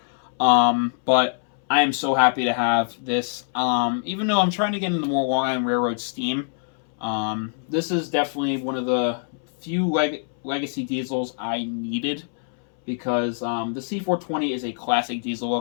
But I am so happy to have this. Even though I'm trying to get into more Long Island Railroad steam, this is definitely one of the few legacy diesels I needed, because the C420 is a classic diesel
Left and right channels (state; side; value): silent; right; 63 dB below the other